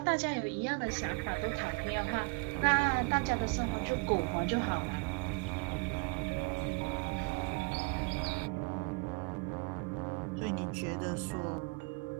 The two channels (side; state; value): left; quieter; 29.6 dB